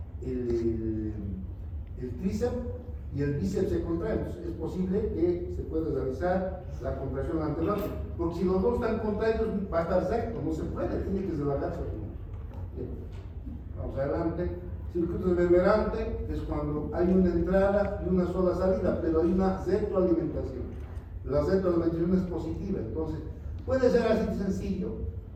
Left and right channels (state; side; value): identical; both; correlation 1.00